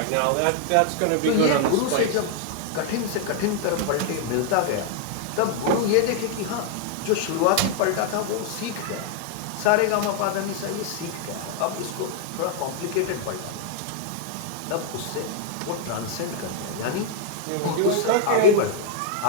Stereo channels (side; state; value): both; different; correlation 0.00